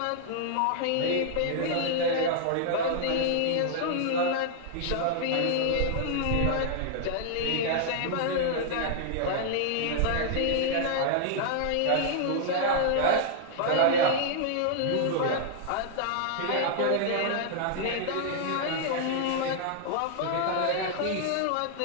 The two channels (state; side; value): different; both; correlation -0.01